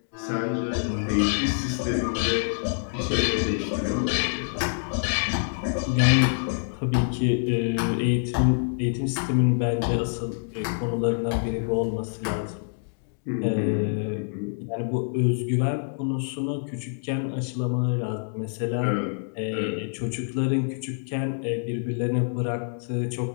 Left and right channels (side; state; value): right; silent; digital silence